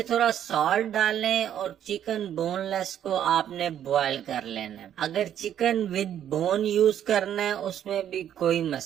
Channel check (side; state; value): left; quieter; 10.2 dB